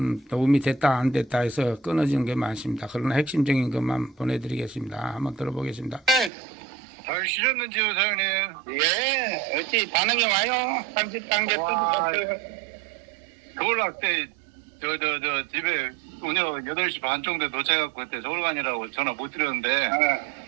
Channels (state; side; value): drops out; left; at 6.3 s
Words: 됐다 안 됐다 해서 끊어지는 게 많습니다. 그러나 핵심적인 것만 보내드리겠습니다. 한번 들어보겠습니다. 잘 쉬셨는지요, 사장님? 예, 어찌 반응이 와요? 30단계 와, 뜯어졌어요. 서울학 때, 집에 오늘 8시 반 정도에 도착해갖고 그때 서울 가니라고 전화 못 드렸는데,